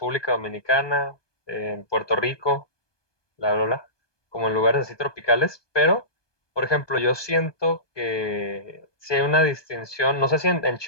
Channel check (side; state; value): right; late; 1.2 ms